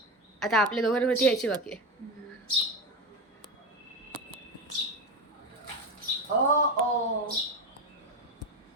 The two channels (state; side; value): normal; both; correlation 0.17